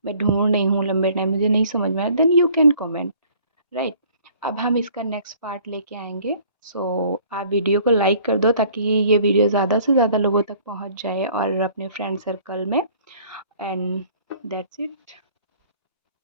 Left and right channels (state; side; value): inverted; both; correlation -0.55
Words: मैं ढूँढ रही हूँ लंबे टाइम, मुझे नहीं समझ में आया, then you can comment, right? अब हम इसका नेक्स्ट पार्ट लेके आएँगे। सो आप वीडियो को लाइक कर दो ताकि ये वीडियो ज़्यादा से ज़्यादा लोगों तक पहुँच जाए और अपने फ्रेंड सर्कल में। And that's it.